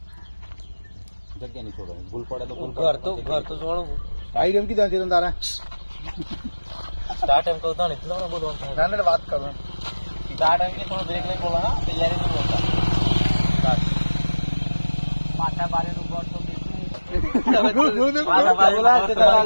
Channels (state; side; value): inverted; both; correlation -1.00